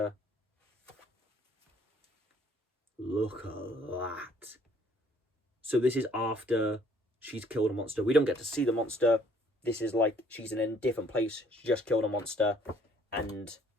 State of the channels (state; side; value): normal; both; correlation 0.61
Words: Look at that. So this is after she's killed a monster. We don't get to see the monster. This is like she's in a different place. She just killed a monster, and